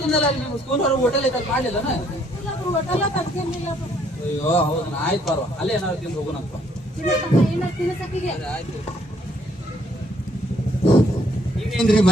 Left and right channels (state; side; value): normal; both; correlation 0.67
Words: ಅಲ್ಲಿ ನಿಮ್ಮ ಸ್ಕೂಲ್ ಹೊರಗೆ ಹೋಟೆಲ್ ಐತಲ್ಲಿ ಮಾಡ್ಲಿಲ್ಲನ? ಅಯ್ಯೋ ಹೌದನ, ಆಯ್ತು ಬಾರ್ವಾ ಅಲ್ಲೇ ಏನಾದ್ರು ತಿಂದು ಹೋಗೋಣಪ್ಪ. ಆಯ್ತು. ಈಗೇನ್ರಿ